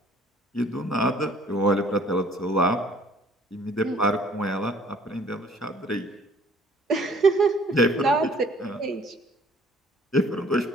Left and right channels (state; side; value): normal; both; correlation 0.57